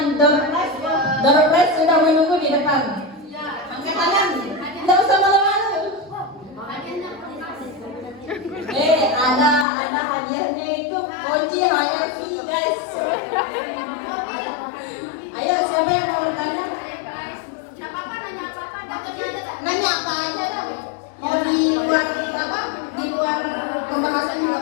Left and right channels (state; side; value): drops out; right; at 9.7 s